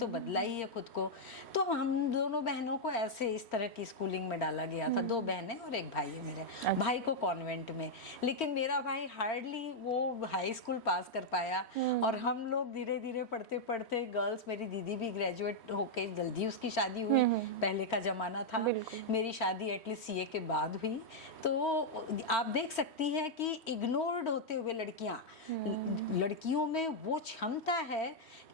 बदला ही है खुद को। तो हम दोनों बहनों को ऐसे इस तरह की स्कूलिंग में डाला गया था। 2 बहनें और एक भाई है मेरे। भाई को कॉन्वेंट में, लेकिन मेरा भाई हार्डली वो हाई स्कूल पास कर पाया। और हम लोग धीरे धीरे पढ़ते पढ़ते, गर्ल्स, मेरी दीदी भी ग्रेजुएट होके जल्दी उसकी शादी हुई, पहले का जमाना था। मेरी शादी एटलीस्ट सीए के बाद हुई। तो आप देख सकती हैं कि इग्नोर्ड होते हुए लड़कियों में वो क्षमता है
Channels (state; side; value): late; right; 3.1 ms